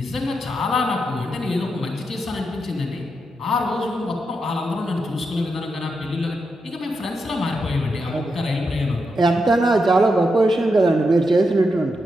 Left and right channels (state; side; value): normal; both; correlation 0.85